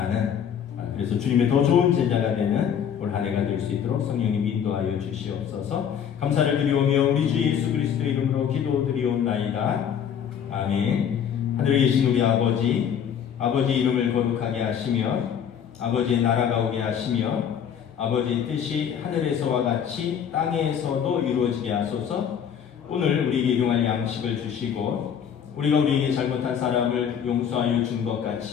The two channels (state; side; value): quieter; right; 8.4 dB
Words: 그래서 주님의 더 좋은 제자가 되는 올 한 해가 될 수 있도록 성령님 인도하여 주시옵소서. 감사를 드리오며 우리 주 예수 그리스도의 이름으로 기도드리옵나이다. 아멘. 하늘에 계신 우리 아버지 이름을 거룩하게 하시며 아버지의 나라가 오게 하시며 아버지의 뜻이 하늘에서와 같이 땅에서도 이루어지게 하소서. 오늘 우리에게 일용할 양식을 주시고 우리가 우리에게 잘못한 사람을 용서하여 준 것